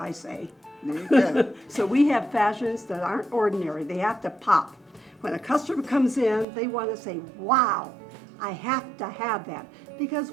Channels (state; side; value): drops out; left; at 6.5 s